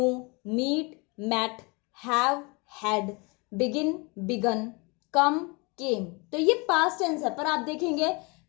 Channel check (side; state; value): right; quieter; 28.7 dB